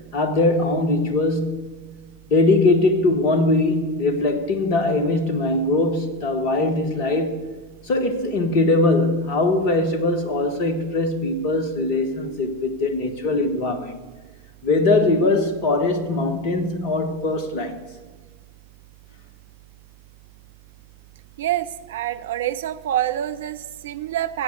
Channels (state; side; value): noise; right; hum, 25 dB below the sound